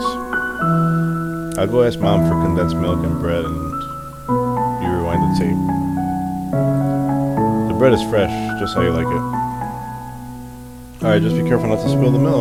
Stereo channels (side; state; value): both; identical; correlation 1.00